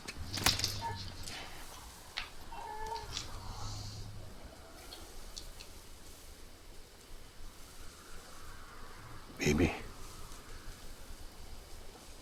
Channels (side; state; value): both; identical; correlation 1.00